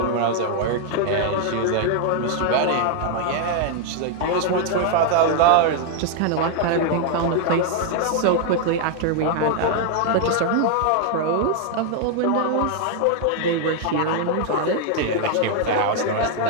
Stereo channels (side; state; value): both; different; correlation 0.00